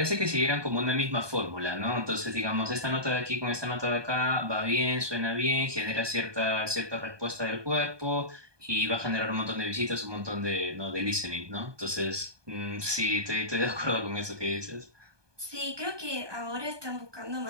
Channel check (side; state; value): left; late; 1.2 ms